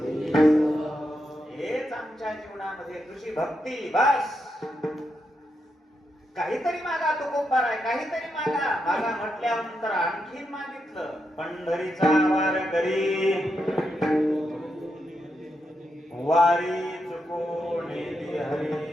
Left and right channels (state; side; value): normal; both; correlation 0.84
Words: हेच आमच्या जीवनामध्ये तुझी भक्ती. बस काहीतरी मागा. तो कोपार आहे, काहीतरी मागा. मागा म्हटल्यानंतर आणखीन मागितलं. पंढरीचा वार करी वारी चुकोने हरी.